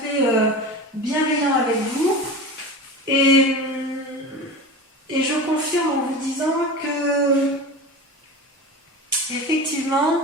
bienveillants avec vous. Et je confirme en vous disant que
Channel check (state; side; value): normal; both; correlation 0.30